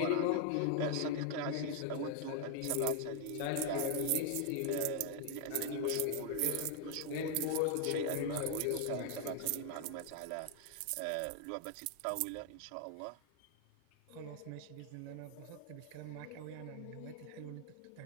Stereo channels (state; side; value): different; both; correlation 0.00